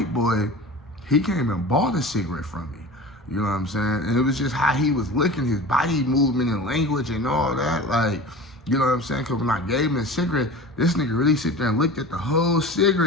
boy, he came and bought a cigarette from me. You know what I'm saying? And it was just how he was looking, his body movement and language and all that. Like, you know what I'm saying? Because when I gave him a cigarette, this nigga really sit there and looked at the whole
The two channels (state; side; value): normal; both; correlation 0.35